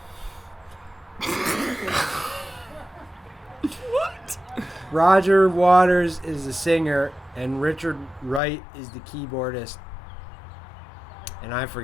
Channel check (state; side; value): drops out; right; at 8.4 s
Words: What? Roger Waters is the singer, and Richard Wright is the keyboardist. And I